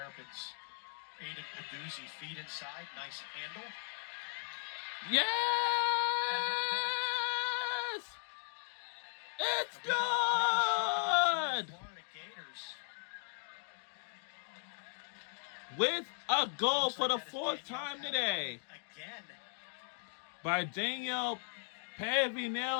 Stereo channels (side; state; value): right; silent; 53 dB below the other